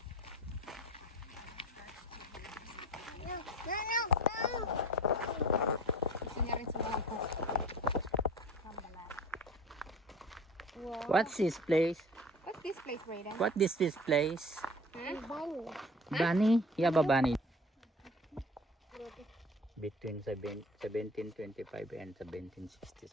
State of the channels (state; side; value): normal; both; correlation 0.42